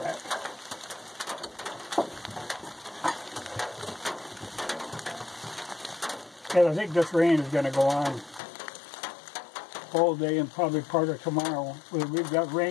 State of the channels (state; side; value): drops out; right; at 8.4 s